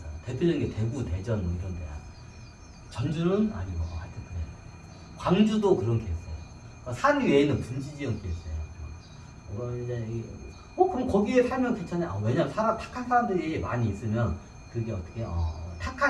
대표적인 게 대구, 대전 뭐 이런 데야. 전주는 아니고 하여튼 그래. 광주도 그런 게 있어요. 산 위에는 분지 지형이 있어요. 그럼 거기에 살면 괜찮아요. 왜냐면 탁한 사람들이 많이 있으면 그게 어떻게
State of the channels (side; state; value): both; identical; correlation 1.00